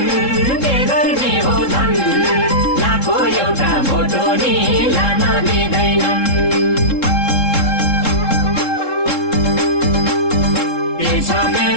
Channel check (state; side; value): late; right; 3.7 ms